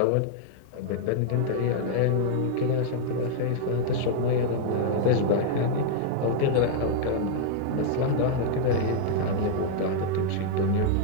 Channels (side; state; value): both; different; correlation -0.01